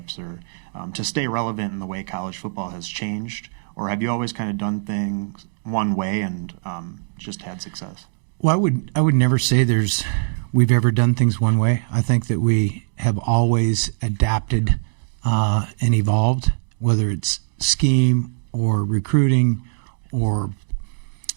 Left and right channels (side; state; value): left; silent; digital silence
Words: or to stay relevant in the way college football has changed? Or have you always kind of done things one way and just had success? Well, I would never say we've ever done things one way. I think that we have always adapted and evolved, whether it's scheme or recruiting or